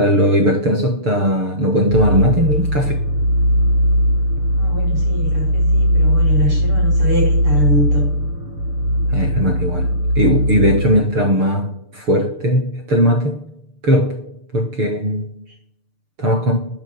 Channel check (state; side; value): late; left; 6.7 ms